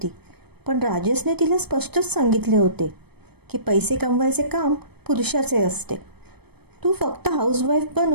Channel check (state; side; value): late; left; 0.97 ms